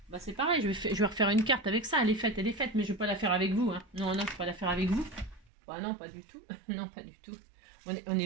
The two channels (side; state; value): left; drops out; at 5.5 s